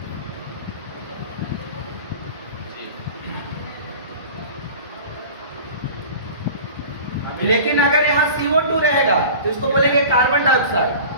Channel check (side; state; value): both; inverted; correlation -0.39